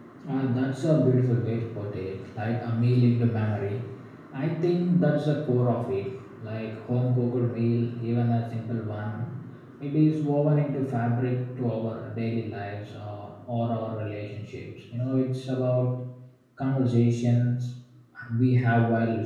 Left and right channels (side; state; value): both; identical; correlation 1.00